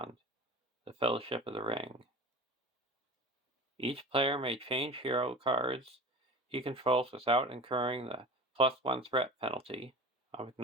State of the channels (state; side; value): normal; both; correlation 0.35